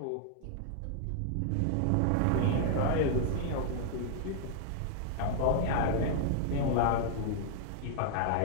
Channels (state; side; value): different; both; correlation 0.00